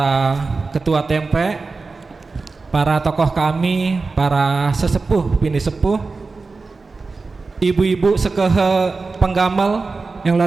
ketua Tempe, para tokoh kami, para sesepuh bini sepuh, ibu-ibu sekehe penggamal yang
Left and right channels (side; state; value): left; quieter; 4.0 dB